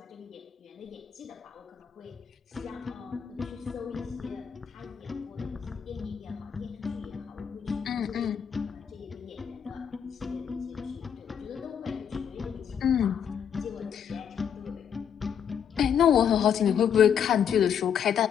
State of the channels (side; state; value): right; quieter; 8.0 dB